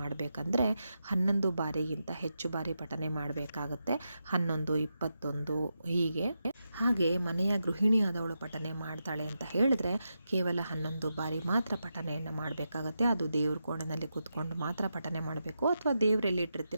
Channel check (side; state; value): both; inverted; correlation -0.87